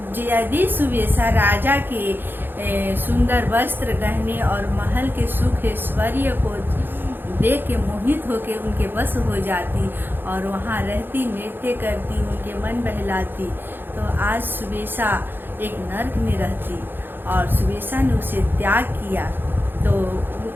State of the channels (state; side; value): late; left; 0.098 ms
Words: यदि सुबेसा राजा के सुंदर वस्त्र, गहने और महल के सुख ऐश्वर्य को देख के मोहित होके उनके बस हो जाती और वहाँ रहती, नृत्य करती, उनके मन बहलाती, तो आज सुबेसा एक नर्क में रहती और सुबेसा ने उसे त्याग किया तो